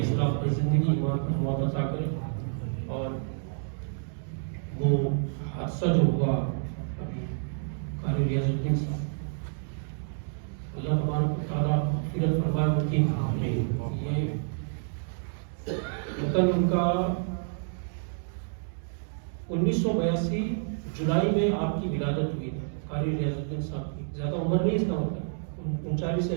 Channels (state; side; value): silent; left; digital silence